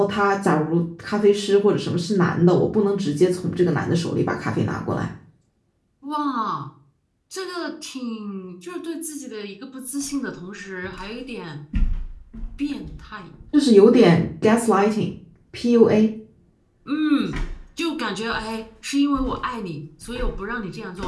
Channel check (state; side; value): identical; both; correlation 1.00